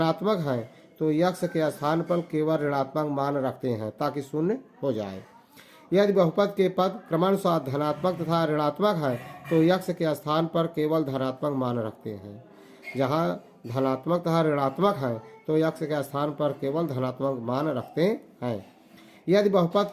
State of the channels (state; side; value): identical; both; correlation 1.00